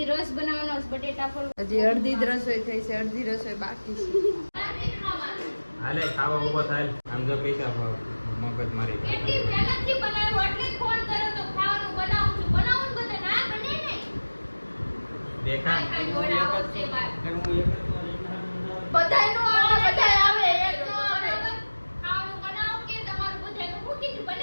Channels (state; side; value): inverted; both; correlation -1.00